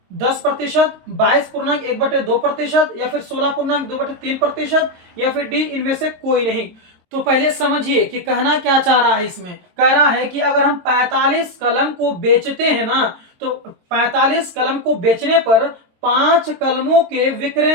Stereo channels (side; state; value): left; late; 23 ms